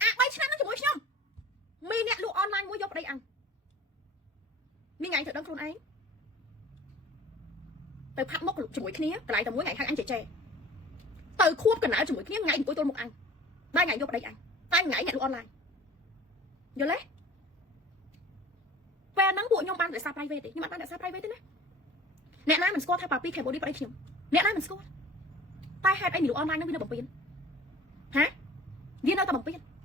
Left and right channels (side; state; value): both; normal; correlation 0.45